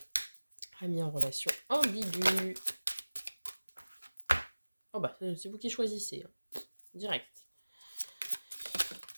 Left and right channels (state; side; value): inverted; both; correlation -1.00